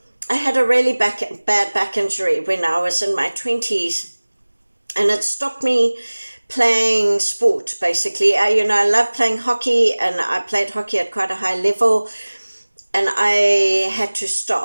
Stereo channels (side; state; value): both; inverted; correlation -1.00